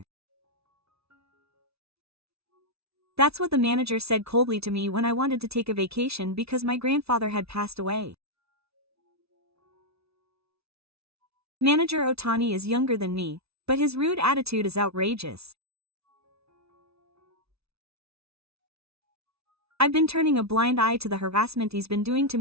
That's what the manager said coldly to me when I wanted to take a vacation because my grandfather had passed away. Manager Otani is younger than me, but his rude attitude is outrageous. I've been turning a blind eye to the harassment he's been doing to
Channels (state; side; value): late; left; 0.79 ms